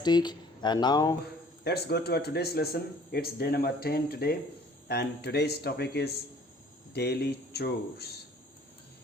And now let's go to our today's lesson. It's day number 10 today, and today's topic is daily chores.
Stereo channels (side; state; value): both; normal; correlation 0.54